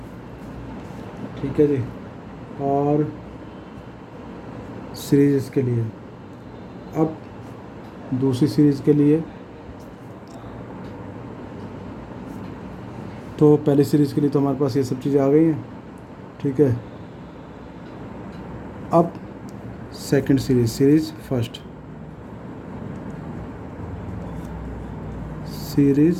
ठीक है जी, और सीरीज इसके लिए। अब दूसरी सीरीज़ के लिए, तो पहली सीरीज़ के लिए तो हमारे पास ये सब चीज़ें आ गई हैं। ठीक है, अब second series first series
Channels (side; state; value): both; identical; correlation 1.00